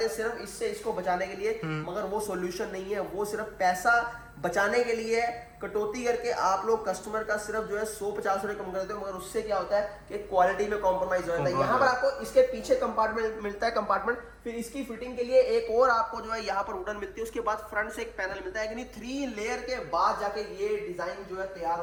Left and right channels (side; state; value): both; identical; correlation 1.00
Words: थे सिर्फ इससे इसको बचाने के लिए, मगर वो सॉल्यूशन नहीं है। वो सिर्फ पैसा बचाने के लिए कटौती करके आप लोग कस्टमर का सिर्फ जो है 100-50 रुपए कम कर देते हो, मगर उससे क्या होता है कि क्वालिटी में कॉम्प्रोमाइज हो जाता है। यहाँ पर आपको इसके पीछे कंपार्टमेंट मिलता है, कंपार्टमेंट, फिर इसकी फिटिंग के लिए एक और आपको जो है यहाँ पर वुडन मिलती है। उसके बाद फ्रंट से एक पैनल मिलता है, यानी 3 लेयर के बाद जाके ये डिजाइन जो है तैयार